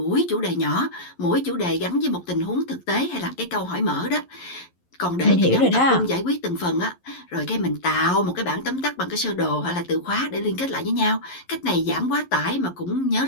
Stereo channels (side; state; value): right; late; 11 ms